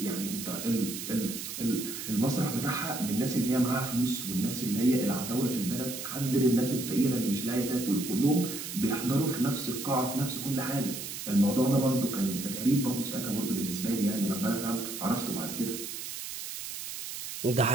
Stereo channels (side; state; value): right; noise; hiss, 7 dB below the sound